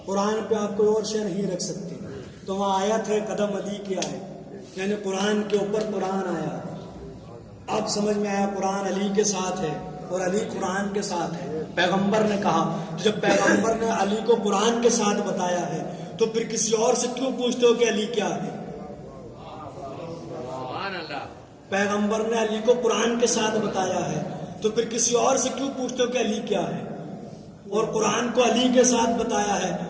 قرآن پہ آپ کوئی اور شے نہیں رکھ سکتے۔ تو وہاں آیت ہے قدم علی کی آیت، یعنی قرآن کے اوپر قرآن آیا۔ اب سمجھ میں آیا قرآن علی کے ساتھ ہے اور علی قرآن کے ساتھ ہے۔ پیغمبر نے کہا، جب پیغمبر نے علی کو قرآن کے ساتھ بتایا ہے تو پھر کسی اور سے کیوں پوچھتے ہو کہ علی کیا ہے؟ پیغمبر نے علی کو قرآن کے ساتھ بتایا ہے تو پھر کسی اور سے کیوں پوچھتے ہو کہ علی کیا ہے؟ اور قرآن کو علی کے ساتھ بتایا ہے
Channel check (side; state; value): both; identical; correlation 1.00